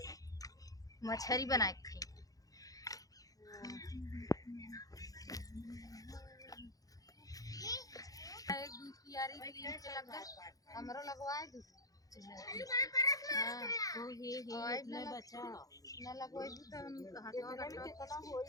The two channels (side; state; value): right; late; 0.17 ms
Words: मछरी बनाए खाई। एक दू कियारी तीन के लग हमरो लगवाए दू। हां तो हे इतना बचा ना लगवाई दू तो हम हाथवा गट्टा कितना